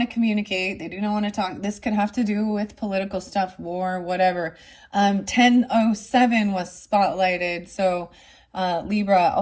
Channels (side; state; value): both; identical; correlation 1.00